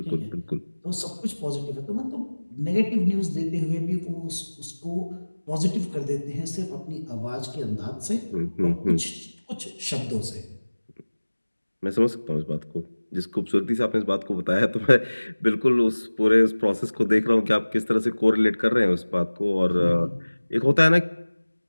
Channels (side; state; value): both; inverted; correlation -1.00